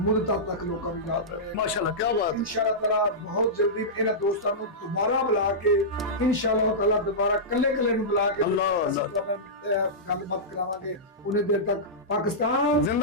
ਤੱਕ ਲੋਕਾਂ ਨੂੰ ਯਾਦ ਰਹੇ। ਮਾਸ਼ਾਅੱਲਾ, ਕੀ ਬਾਤ ਹੈ। इंशाअल्लाह ताला बहुत जल्दी ਇਹਨਾਂ ਦੋਸਤਾਂ ਨੂੰ ਦੁਬਾਰਾ ਬੁਲਾ ਕੇ इंशाअल्लाह ताला ਦੁਬਾਰਾ ਕੱਲੇ ਨੂੰ ਬੁਲਾ ਕੇ ਅੱਲਾਹ ਗੱਲਬਾਤ ਕਰਾਵਾਂਗੇ। ਉਹਨੇ ਦੇਰ ਤੱਕ ਪਾਕਿਸਤਾਨ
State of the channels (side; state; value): both; normal; correlation -0.14